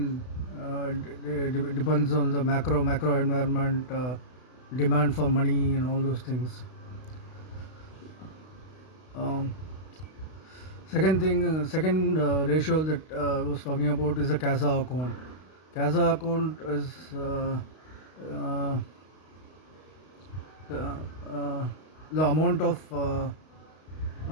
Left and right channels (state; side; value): late; right; 32 ms